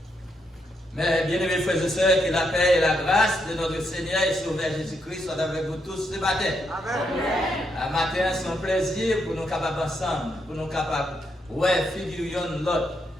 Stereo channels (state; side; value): normal; both; correlation 0.79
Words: Mais bien-aimés frères et sœurs, que la paix et la grâce de notre Seigneur et Sauveur Jésus-Christ soient avec vous tous ce matin. Amen. Un matin, c'est un plaisir pour nous capables ensemble, pour nous capables, ouais, figurions l'autre.